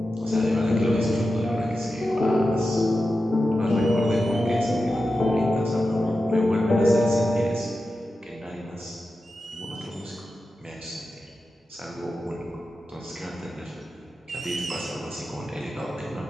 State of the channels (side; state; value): both; normal; correlation 0.91